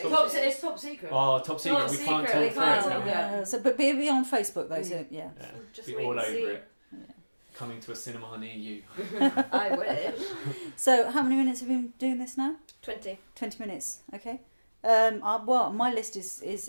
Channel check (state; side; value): inverted; both; correlation -1.00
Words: It's top secret. Oh, top secret. We can't talk through it. So, but be on Facebook though. So yeah. Just be wait all and over see. it. Yeah. Coming to a cinema near you. I will. So how many minutes have you been doing this now? 20 minutes. Okay. Well, my list